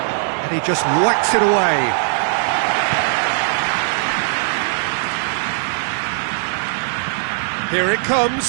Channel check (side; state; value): left; silent; digital silence